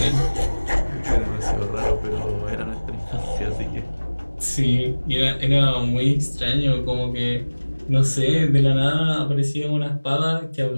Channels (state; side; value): inverted; both; correlation -1.00